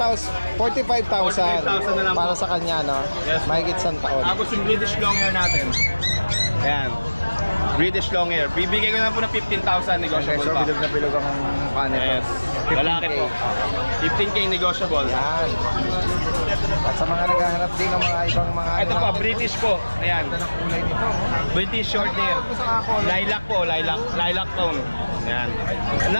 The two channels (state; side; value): inverted; both; correlation -1.00